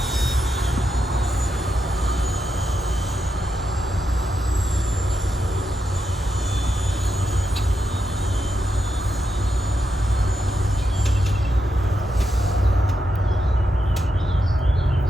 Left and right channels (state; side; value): normal; both; correlation 0.85